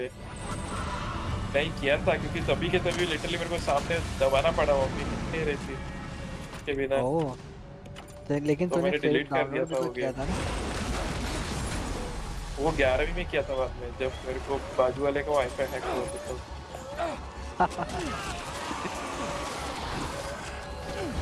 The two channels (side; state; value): both; identical; correlation 1.00